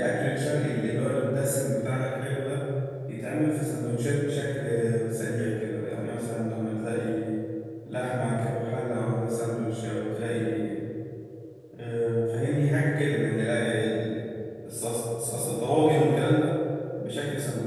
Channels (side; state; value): both; identical; correlation 1.00